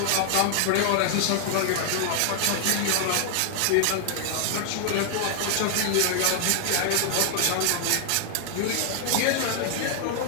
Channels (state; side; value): different; both; correlation 0.00